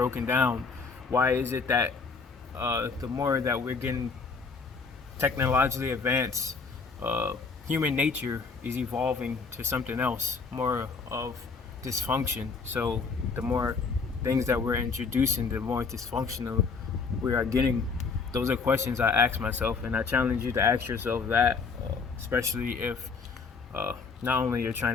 down? Why is it that the more that we're getting technologically advanced, uh, human nature is evolving to something else, more of dysfunction? So the more things that we're introducing, the more dysfunctional we are getting. Those are questions I ask myself, and I challenge you to ask yourself that, especially if uh, not only you're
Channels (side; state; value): right; quieter; 4.8 dB